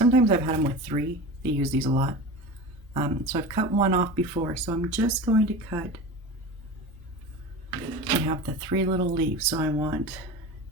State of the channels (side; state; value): both; normal; correlation 0.31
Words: I've had them with 3. They use these a lot. So I've cut one off before, so I'm just going to cut. I have the 3 little leaves, so I want